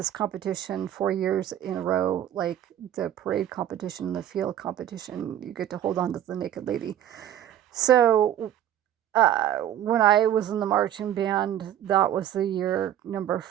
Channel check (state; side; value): quieter; left; 11.2 dB